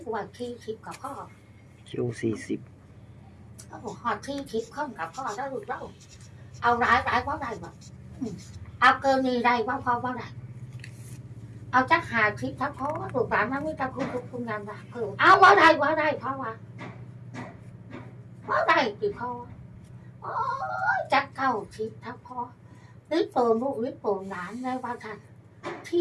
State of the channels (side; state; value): both; identical; correlation 1.00